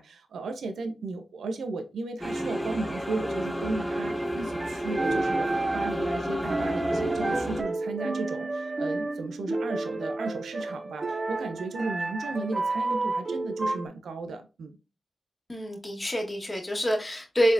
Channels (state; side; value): normal; both; correlation 0.93